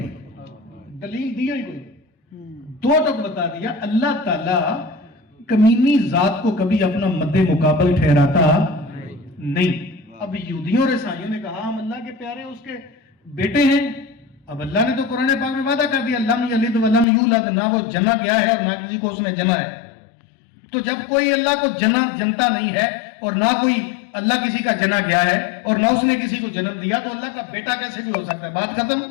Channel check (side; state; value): right; drops out; at 17.1 s